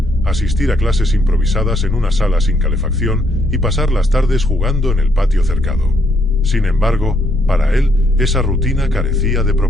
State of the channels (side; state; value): both; normal; correlation 0.72